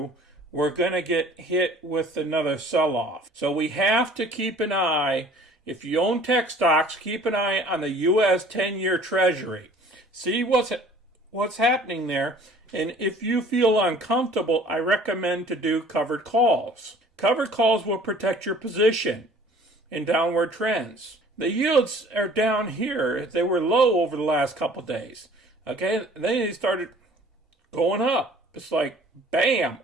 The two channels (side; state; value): both; normal; correlation 0.51